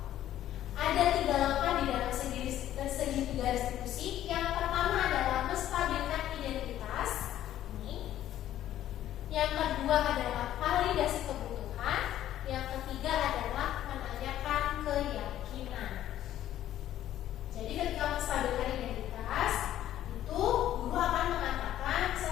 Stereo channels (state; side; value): quieter; right; 12.4 dB